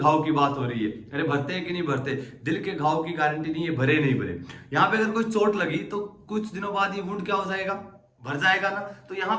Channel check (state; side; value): identical; both; correlation 1.00